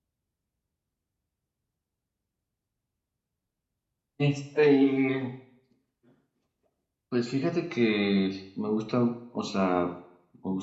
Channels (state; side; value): identical; both; correlation 1.00